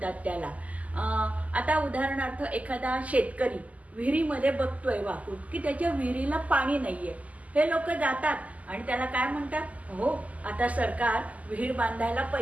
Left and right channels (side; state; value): left; late; 0.073 ms